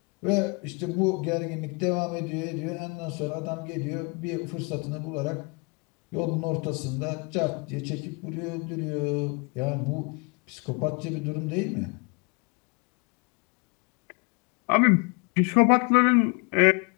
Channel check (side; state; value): right; quieter; 32.0 dB